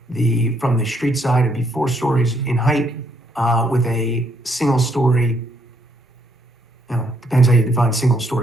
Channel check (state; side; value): normal; both; correlation 0.71